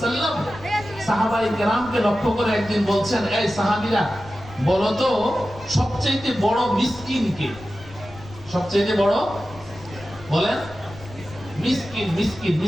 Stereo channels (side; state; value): left; noise; rumble, 18 dB below the sound